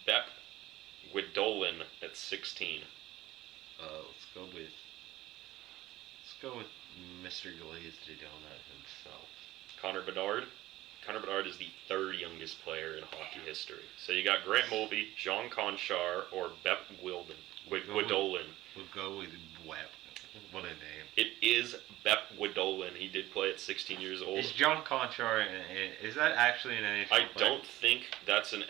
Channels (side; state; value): left; quieter; 16.5 dB